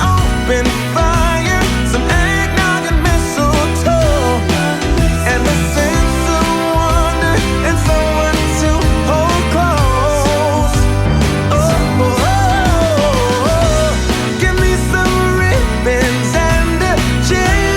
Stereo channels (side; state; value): both; identical; correlation 1.00